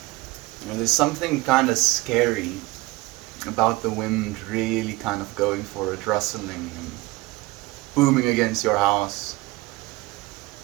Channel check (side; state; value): left; quieter; 21.1 dB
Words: You know, there's something kind of scary about the wind really kind of going for it, rustling and booming against your house.